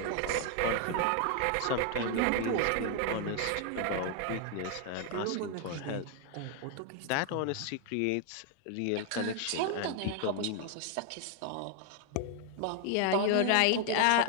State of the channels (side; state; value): both; different; correlation 0.00